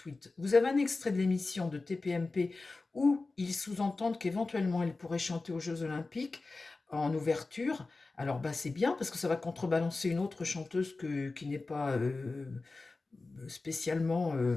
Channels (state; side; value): quieter; right; 3.6 dB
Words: Vous avez un extrait de l'émission de TPMP où ils sous-entendent qu'éventuellement elle pourrait chanter aux Jeux Olympiques en ouverture. Alors bah, c'est bien parce que ça va contrebalancer une autre chanteuse qui n'est pas spécialement